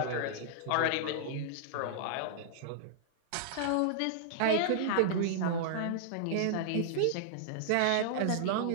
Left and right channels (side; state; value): both; different; correlation -0.02